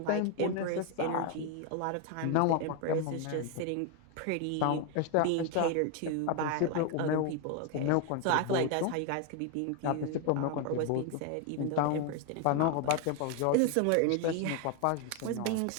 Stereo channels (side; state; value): both; different; correlation 0.01